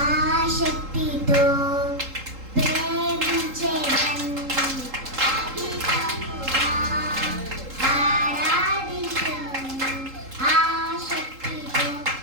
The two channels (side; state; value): left; late; 3.8 ms